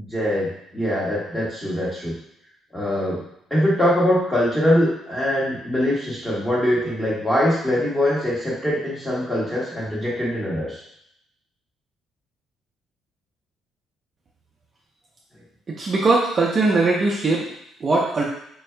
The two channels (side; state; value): both; normal; correlation 0.80